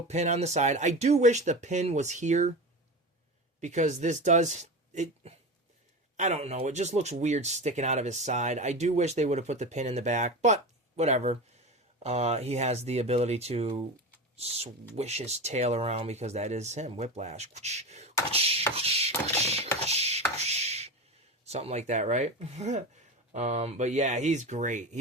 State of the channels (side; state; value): both; normal; correlation 0.25